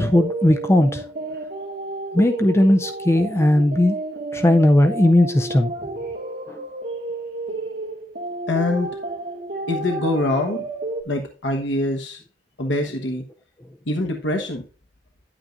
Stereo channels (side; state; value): both; normal; correlation 0.82